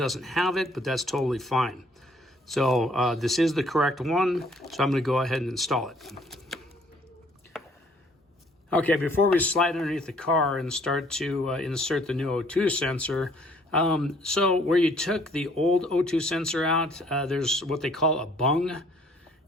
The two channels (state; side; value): normal; both; correlation 0.61